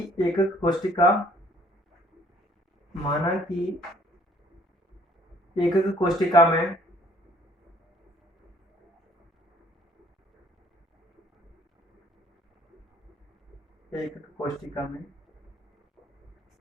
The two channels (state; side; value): normal; both; correlation 0.60